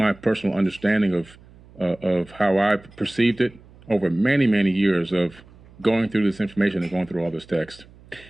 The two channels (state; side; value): noise; right; hum, 24 dB below the sound